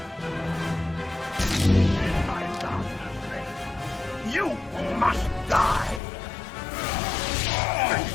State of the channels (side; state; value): right; drops out; at 6.0 s